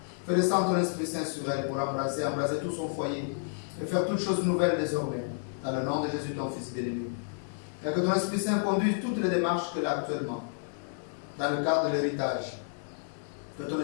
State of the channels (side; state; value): right; silent; digital silence